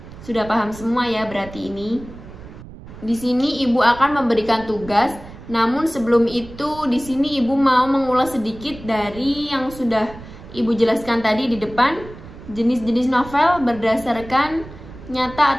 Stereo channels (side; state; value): right; noise; rumble, 16 dB below the sound